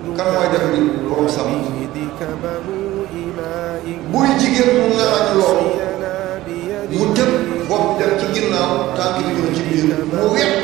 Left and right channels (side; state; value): left; quieter; 16.4 dB